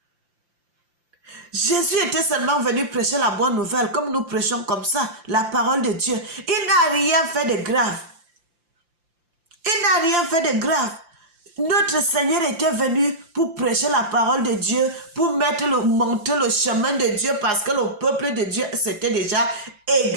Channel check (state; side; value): late; left; 5.8 ms